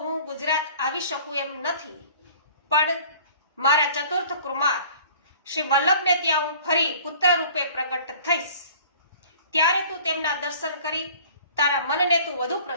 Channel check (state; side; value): inverted; both; correlation -0.49